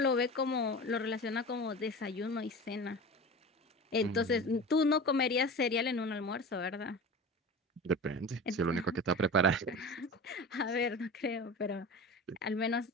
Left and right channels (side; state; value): both; normal; correlation 0.33